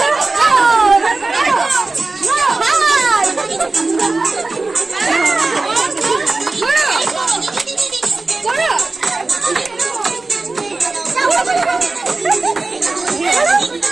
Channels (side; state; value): left; quieter; 3.5 dB